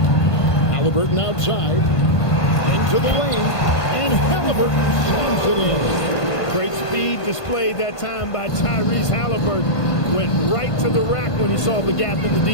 Halliburton outside. Into the lane. And Halliburton slams it in. Great speed displayed that time by Tyrese Halliburton. Went right to the rack when he saw the gap in the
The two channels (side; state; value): right; late; 1.5 ms